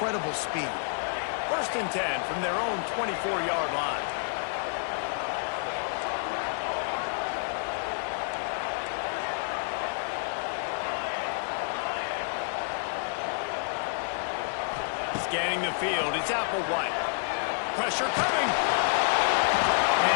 speed. First and 10 from their own 24-yard line. Scanning the field, it's Applewhite. Pressure coming. And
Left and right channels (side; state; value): right; silent; digital silence